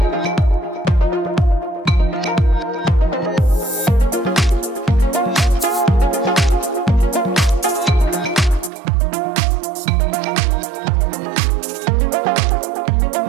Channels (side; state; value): left; drops out; at 8.7 s